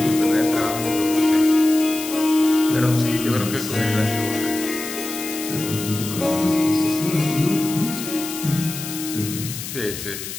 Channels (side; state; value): left; noise; hiss, 8 dB below the sound